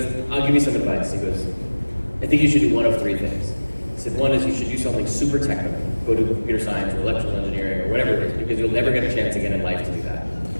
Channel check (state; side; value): inverted; both; correlation -1.00